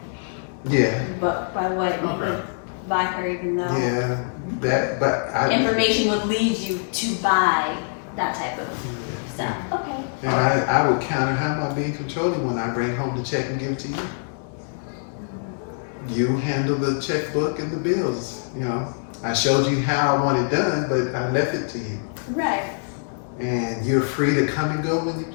Yeah, but by what you would buy her, even though yeah, information would lead you to buy that type of stuff. Okay. And I would counter, how am I being controlling when I bring home the check and give it to you? You handle the checkbook and the bills, you know. I showed you how I want it done, but I left it to you. Right. And you're free to come and go when you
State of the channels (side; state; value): right; silent; 62 dB below the other